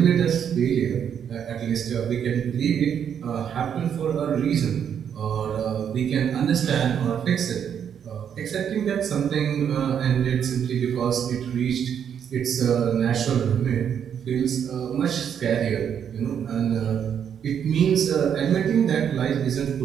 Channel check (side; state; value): left; quieter; 8.4 dB